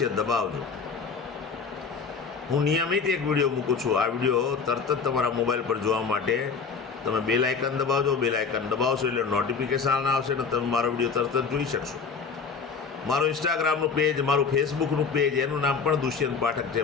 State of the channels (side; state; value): right; quieter; 5.4 dB